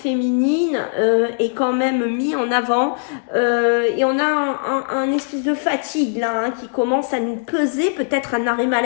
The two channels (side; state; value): right; silent; digital silence